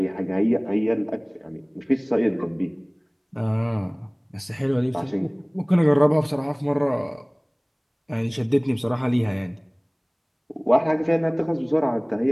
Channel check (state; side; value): identical; both; correlation 1.00